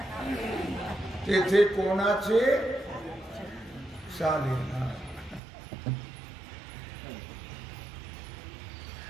तेथे कोणाचे चालेना.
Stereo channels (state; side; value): drops out; left; at 5.4 s